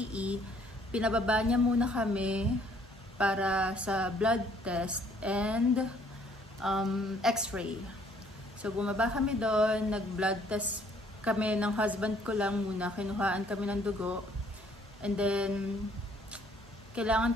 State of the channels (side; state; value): both; normal; correlation 0.62